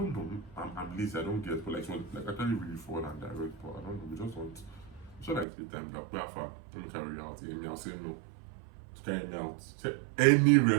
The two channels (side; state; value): left; drops out; at 5.5 s